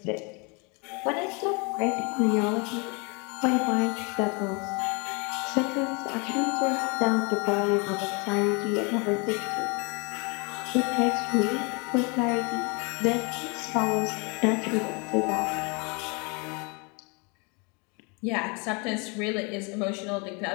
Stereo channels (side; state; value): right; quieter; 31.5 dB